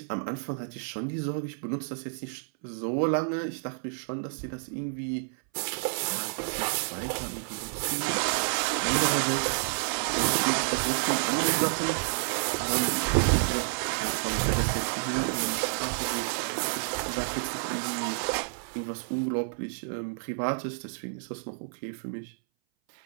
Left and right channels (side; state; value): left; silent; 58 dB below the other